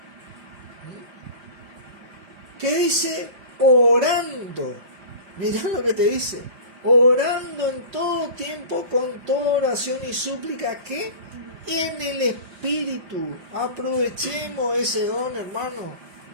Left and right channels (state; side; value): late; left; 5.0 ms